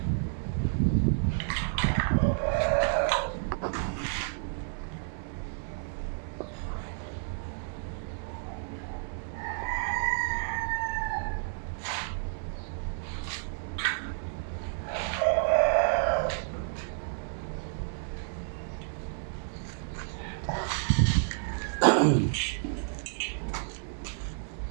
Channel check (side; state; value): left; silent; 57 dB below the other